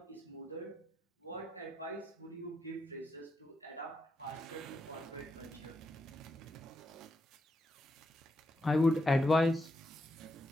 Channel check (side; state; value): both; normal; correlation 0.83